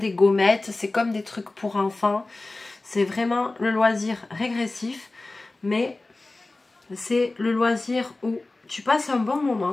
gommettes, c'est comme des trucs pour enfants. C'est vraiment le loisir régressif, mais c'est le loisir où tu passes un bon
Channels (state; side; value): quieter; right; 3.1 dB